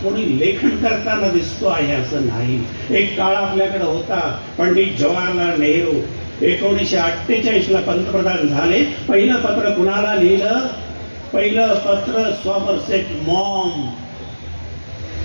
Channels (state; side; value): inverted; both; correlation -1.00